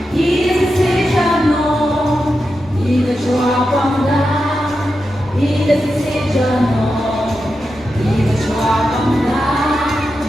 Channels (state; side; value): normal; both; correlation 0.89